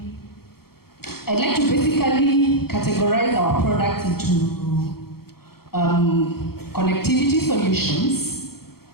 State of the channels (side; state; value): right; late; 0.94 ms